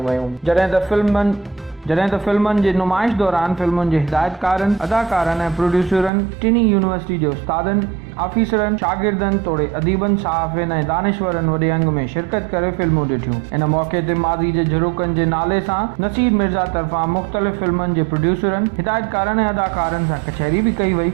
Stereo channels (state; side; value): drops out; left; at 6.1 s